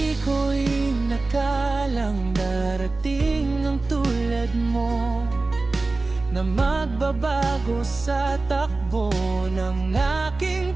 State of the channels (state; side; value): quieter; left; 3.4 dB